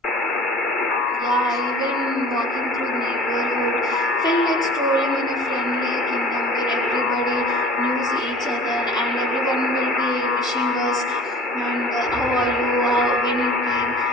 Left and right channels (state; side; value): normal; both; correlation 0.44